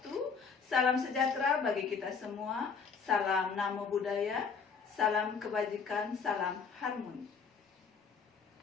Salam sejahtera bagi kita semua. Salam namo buddhaya. Salam kebajikan. Salam harmoni.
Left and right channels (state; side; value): quieter; right; 5.7 dB